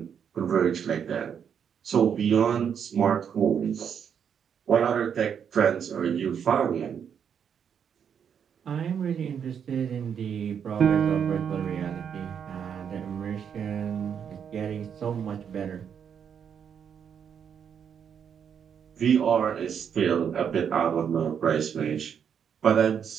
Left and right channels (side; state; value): left; quieter; 7.8 dB